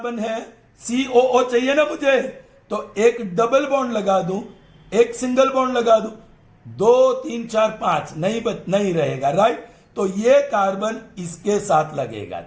है COO चाहिए ना मुझे, तो एक डबल बॉन्ड लगा दूं, एक सिंगल बॉन्ड लगा दूं, 2 3 4 5 नहीं रहेगा. राइट, तो ये कार्बन इसके साथ लगेगा.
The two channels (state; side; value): identical; both; correlation 1.00